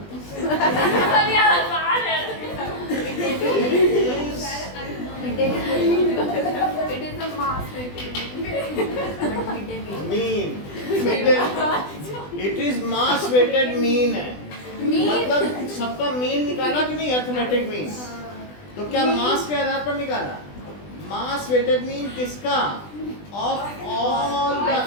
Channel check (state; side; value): late; right; 20 ms